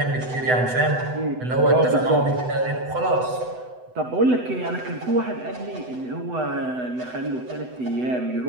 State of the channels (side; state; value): left; late; 8.0 ms